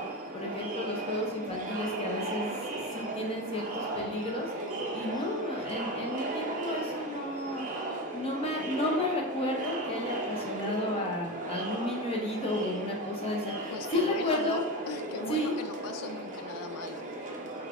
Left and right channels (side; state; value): both; normal; correlation 0.22